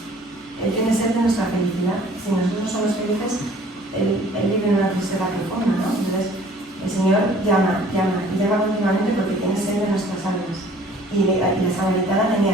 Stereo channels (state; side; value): normal; both; correlation 0.53